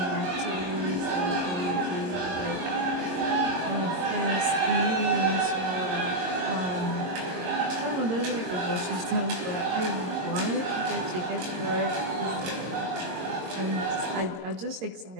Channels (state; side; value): late; left; 22 ms